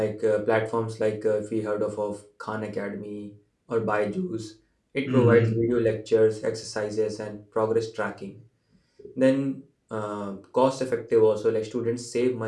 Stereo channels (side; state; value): both; identical; correlation 1.00